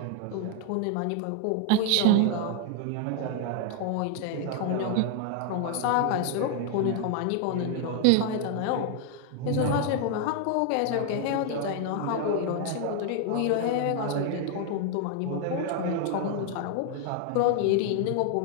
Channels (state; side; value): different; both; correlation 0.00